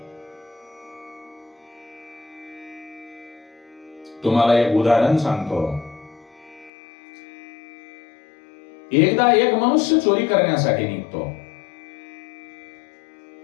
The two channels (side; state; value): right; drops out; at 6.7 s